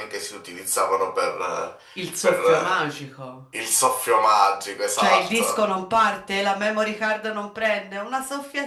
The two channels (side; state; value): both; identical; correlation 1.00